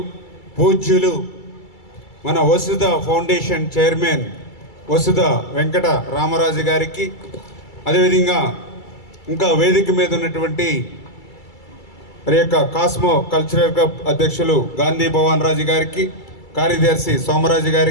పూజ్యులు మన వసుధ ఫౌండేషన్ చైర్మన్ వసుధ వెంకట రామరాజు గారికి, అదేవిధంగా ఇంకా వేదిక మీద ఉన్నటువంటి మరి యొక్క కాస్మో కల్చరల్ క్లబ్ అధ్యక్షులు గాంధీ భవన్ రాజు గారికి, కార్యదర్శి సోమరాజు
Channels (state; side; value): late; right; 2.3 ms